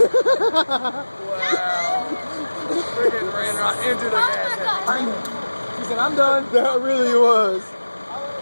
Wow. Freaking ran right into the gas tank. She said, I'm done. That really was.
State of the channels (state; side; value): inverted; both; correlation -1.00